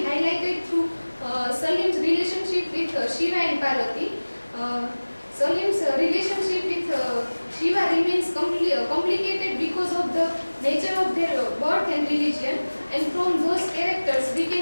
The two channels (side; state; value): both; inverted; correlation -1.00